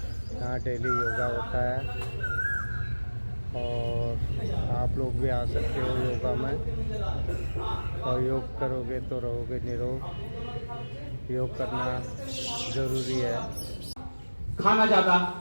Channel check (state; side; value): inverted; both; correlation -1.00